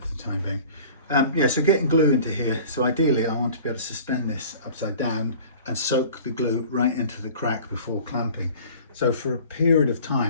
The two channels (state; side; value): inverted; both; correlation -0.44